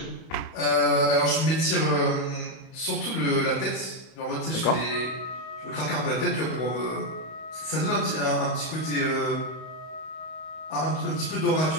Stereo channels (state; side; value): late; right; 31 ms